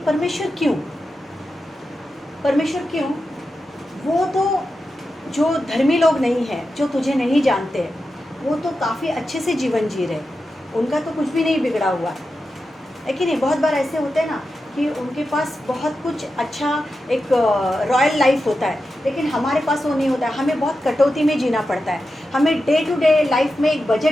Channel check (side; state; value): both; normal; correlation 0.90